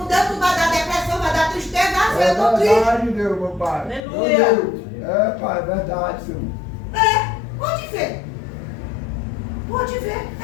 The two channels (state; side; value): drops out; right; at 4.0 s